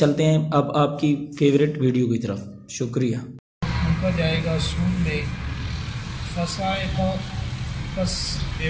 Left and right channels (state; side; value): identical; both; correlation 1.00